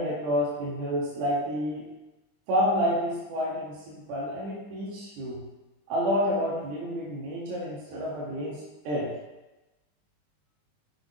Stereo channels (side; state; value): left; late; 20 ms